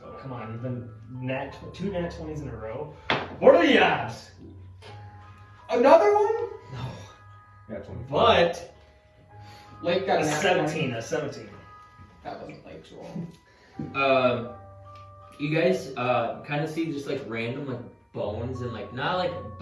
go. Come on, you've been two nat 20s in a row. What are the odds? Another one? Yeah, 24. But Lake got a an 17, a 17. That wasn't Lake's roll. You guys kind of see just like random like bones and like not like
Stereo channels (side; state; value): both; identical; correlation 1.00